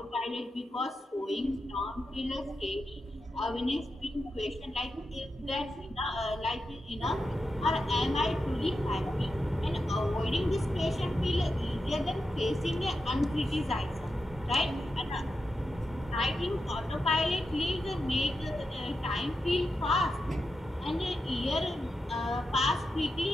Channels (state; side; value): normal; both; correlation 0.88